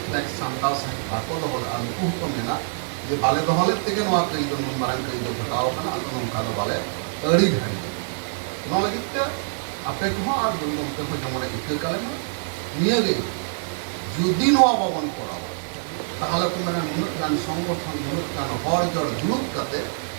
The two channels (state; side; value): silent; left; digital silence